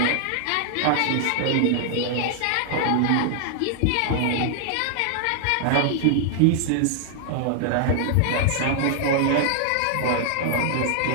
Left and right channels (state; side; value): different; both; correlation -0.01